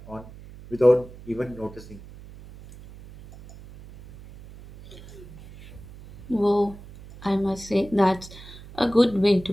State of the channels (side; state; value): right; noise; hum, 18 dB below the sound